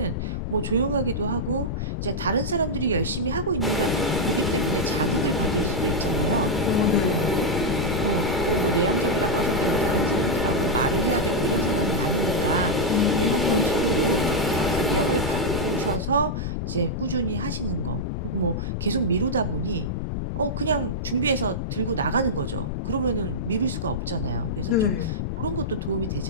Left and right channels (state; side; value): noise; left; rumble, 2 dB below the sound